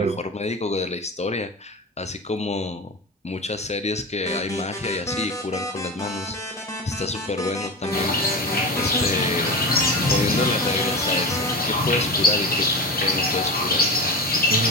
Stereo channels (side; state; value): both; normal; correlation 0.26